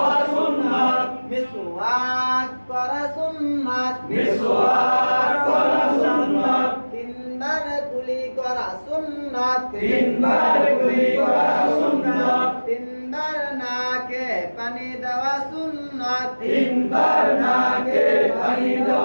সুন্নাত মিসওয়াক করা সুন্নাত মিসওয়াক করা সুন্নাত তিনবার কুলি করা সুন্নাত তিনবার কুলি করা সুন্নাত তিনবার নাকে পানি দেওয়া সুন্নাত তিনবার নাকে পানি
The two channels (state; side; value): inverted; both; correlation -1.00